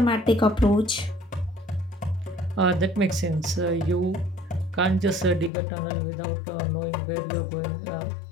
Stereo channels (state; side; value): drops out; right; at 5.5 s